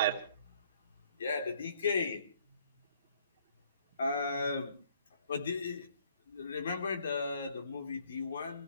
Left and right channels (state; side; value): inverted; both; correlation -0.63